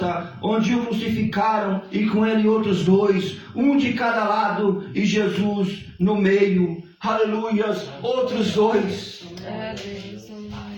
onde o crucificaram, e com ele outros dois, um de cada lado e Jesus no meio. Aleluias, outros dois.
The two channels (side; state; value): both; identical; correlation 1.00